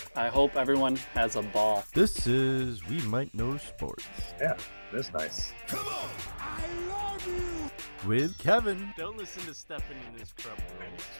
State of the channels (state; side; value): inverted; both; correlation -1.00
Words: I hope everyone has a ball. This is We Might Know Sports. Yeah, that's nice. Come on. I love you. With Kevin. Don't listen to Stefan and his crumb rolls.